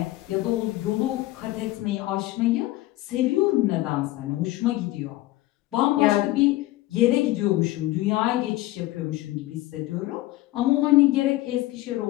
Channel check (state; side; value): quieter; right; 17.5 dB